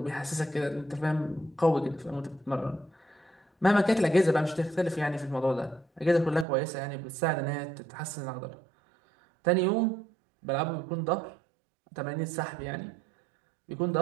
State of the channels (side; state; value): left; drops out; at 6.5 s